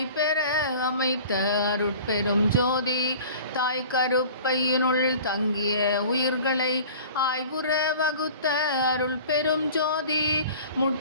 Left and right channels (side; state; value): both; inverted; correlation -0.43